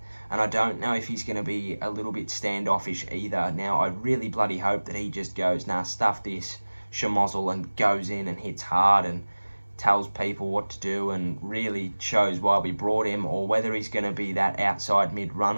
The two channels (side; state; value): both; inverted; correlation -1.00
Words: and I don't know if he's going to be a little bit standoffish either. Now, I really bloody hope that he just goes, nah, stuff this, schmozzle, and goes in and hits hard and tells people what to do and really shows why we brought him, or whether he's going to be that outside mid